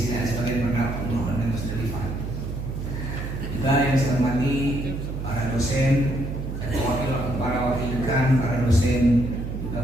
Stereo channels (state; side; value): noise; right; hum, 5 dB below the sound